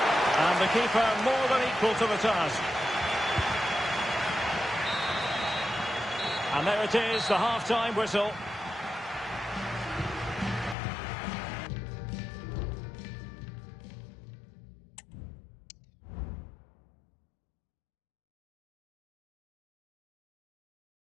And the keeper more than equal to the task. And there it is, the half-time whistle.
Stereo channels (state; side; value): drops out; right; at 10.8 s